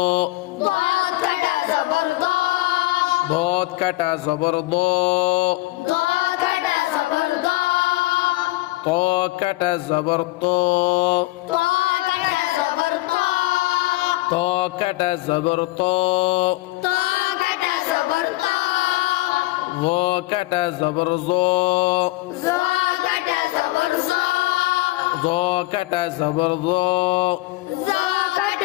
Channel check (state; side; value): quieter; right; 19.7 dB